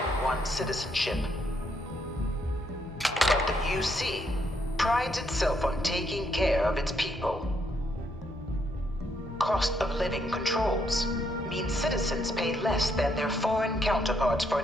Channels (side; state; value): both; normal; correlation 0.75